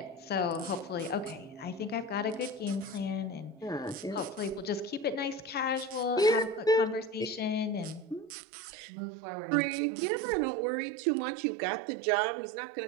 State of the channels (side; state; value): left; drops out; at 8.3 s